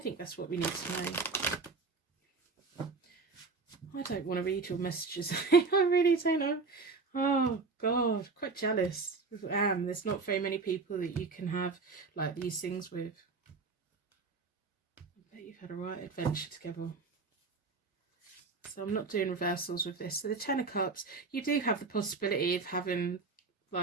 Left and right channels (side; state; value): left; quieter; 4.3 dB